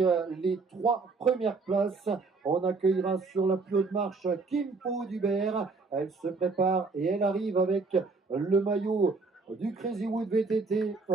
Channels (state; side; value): quieter; left; 4.1 dB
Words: trois premières places. On accueillera sur la plus haute marche Kim Po Dubert. Elle se prépare et elle arrive avec le maillot du Crazy Wood VTT.